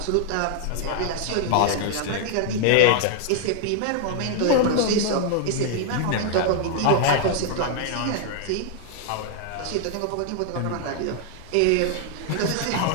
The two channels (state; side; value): different; both; correlation 0.00